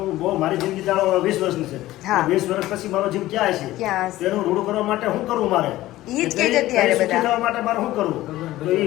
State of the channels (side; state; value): right; quieter; 16.1 dB